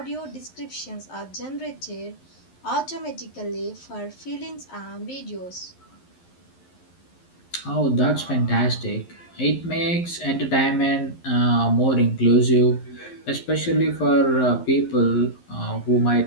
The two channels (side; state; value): right; late; 11 ms